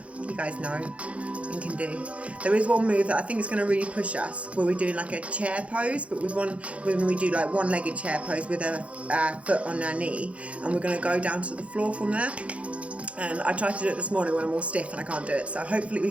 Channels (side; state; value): left; late; 0.063 ms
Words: you guys know and can do. There is one move that I think is going to really push us, where we're doing like a chair pose, but when we do like one-legged chair pose with a foot on our knee, and we're going to go down to the floor from there. And I tried to do it this morning when I'm all stiff and I can't do it, so hopefully we